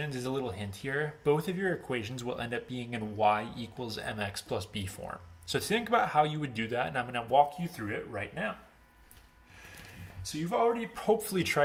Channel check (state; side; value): identical; both; correlation 1.00